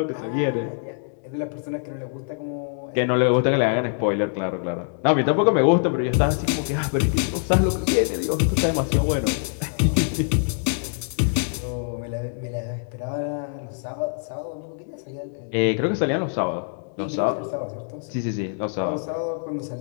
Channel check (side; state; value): right; silent; 62 dB below the other